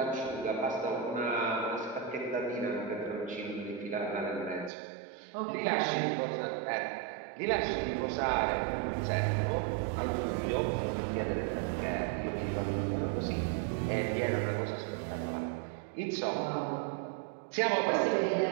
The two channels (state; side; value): drops out; left; at 4.7 s